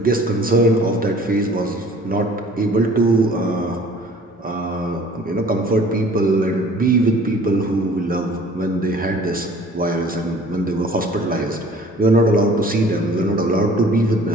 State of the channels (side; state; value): both; normal; correlation 0.50